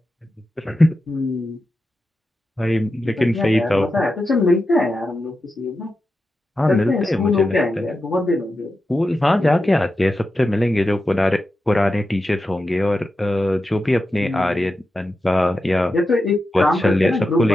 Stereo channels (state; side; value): normal; both; correlation 0.90